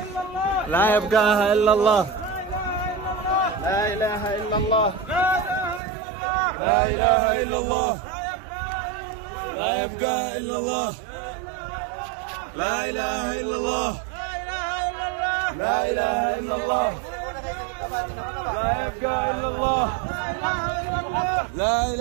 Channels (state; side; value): drops out; left; at 5.8 s